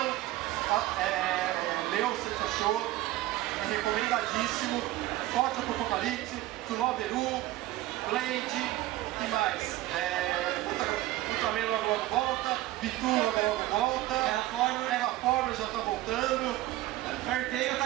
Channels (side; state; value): left; quieter; 16.5 dB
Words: leu o Santi achou, é recomendadíssimo. Forte do Apocalipse, Tsunoberu, Blade, que mais? Ultraman logo volta, Bitu logo volta, Terraformer já tá voltando, Fairy Tail tá